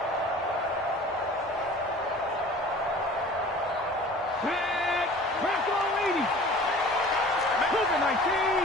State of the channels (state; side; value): normal; both; correlation 0.45